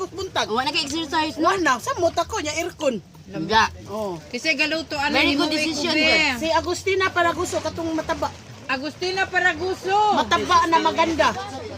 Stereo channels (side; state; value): both; identical; correlation 1.00